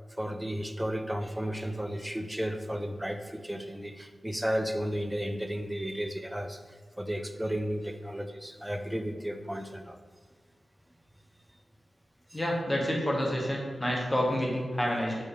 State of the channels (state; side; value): normal; both; correlation 0.95